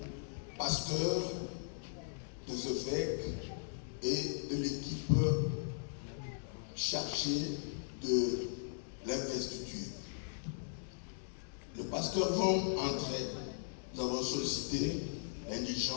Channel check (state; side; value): silent; right; digital silence